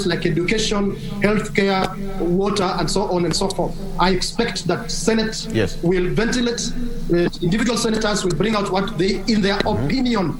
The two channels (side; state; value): both; identical; correlation 1.00